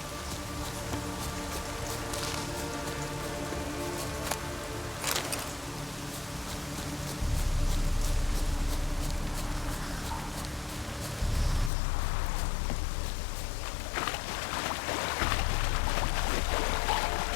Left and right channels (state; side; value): drops out; right; at 11.7 s